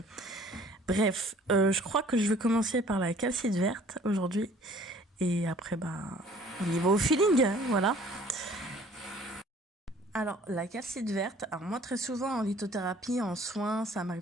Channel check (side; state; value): both; normal; correlation 0.54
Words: Bref, je crois que je vais commencer par la calcite verte aujourd'hui. Et après, on y va au feeling, hein, voilà. Alors, la calcite verte, alors moi très souvent en lithothérapie, en soins, ça